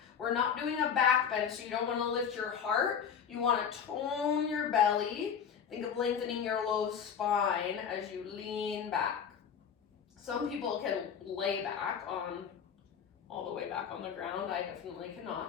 We're not doing a back bend, so you don't wanna lift your heart. You wanna tone your belly. Think of lengthening your low spine as you lean back. Some people can lay back all the way back on the ground. I definitely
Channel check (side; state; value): right; quieter; 7.4 dB